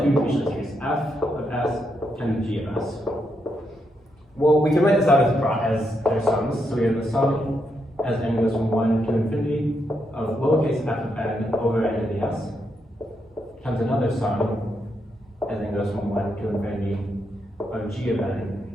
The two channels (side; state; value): both; normal; correlation 0.80